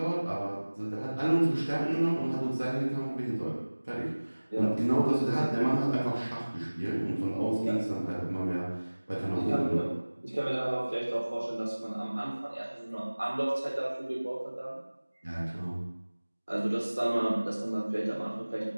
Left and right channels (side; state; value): both; inverted; correlation -1.00